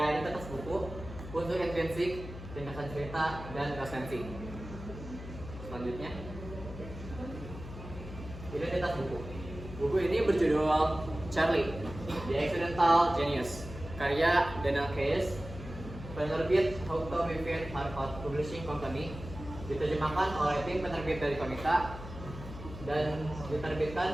buku, unsur intrinsik, ringkasan cerita, dan resensi. Selanjutnya, identitas buku. Buku ini berjudul Charlie, The Accidental Genius, karya Daniel Case, penerbit Houghton Mifflin Harcourt Publishing Company, diterjemahkan oleh tim penerbit dari Komika, dan diterbitkan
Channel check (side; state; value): left; noise; hum, 12 dB below the sound